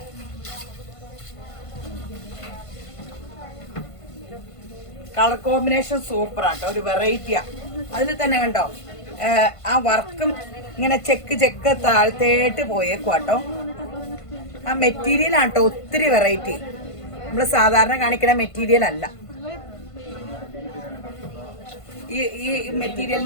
കളർ കോമ്പിനേഷൻ സൂപ്പർ ആട്ടോ. ഒരു വെറൈറ്റിയാ. അതിൽ തന്നെ കണ്ടോ ആ വർക്കും ഇങ്ങനെ ചെക്ക് താഴ്ത്തേട്ട് പോയേക്കുവാട്ടോ. ആ മെറ്റീരിയൽ ആട്ടോ ഒത്തിരി വെറൈറ്റി. നമ്മൾ സാധാരണ കാണിക്കുന്ന മെറ്റീരിയൽ അല്ല. ഈ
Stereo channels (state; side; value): late; right; 1.5 ms